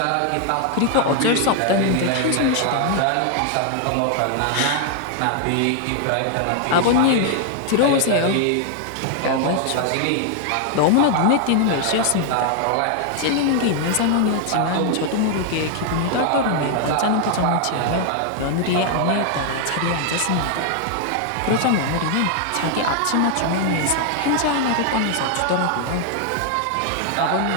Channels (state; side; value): different; both; correlation 0.00